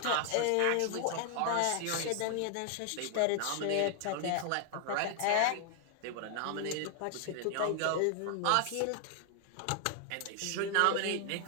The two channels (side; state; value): both; different; correlation 0.00